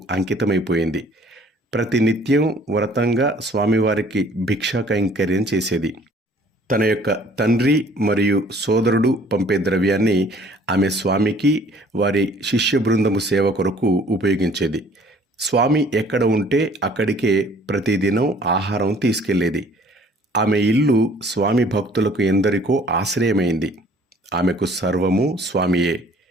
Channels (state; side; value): normal; both; correlation 0.55